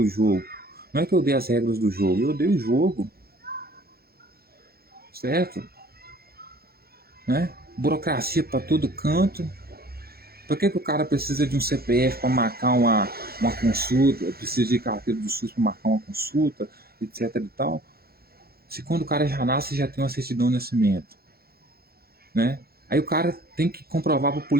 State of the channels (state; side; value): late; left; 0.45 ms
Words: o jogo, não é que eu odeio as regras do jogo, eu odeio o jogo, certo? né? Burocracia para todo canto. Por que o cara precisa de um CPF para marcar uma consulta, precisa de carteira do SUS para marcar uma consulta, etc e tal? Se quando o cara já nasce, já tem uma certidão de nascimento, né? Aí o cara tem que comprovar para o